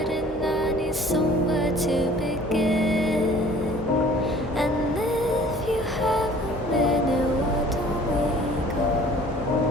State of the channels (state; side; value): normal; both; correlation 0.50